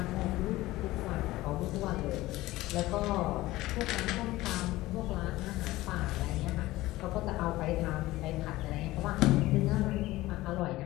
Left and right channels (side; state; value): right; quieter; 17.7 dB